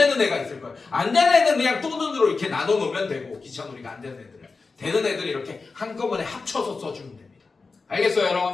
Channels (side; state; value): right; quieter; 4.2 dB